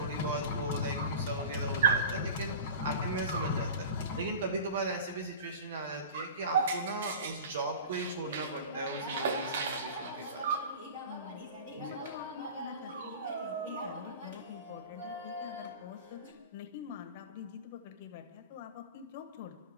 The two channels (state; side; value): inverted; both; correlation -0.35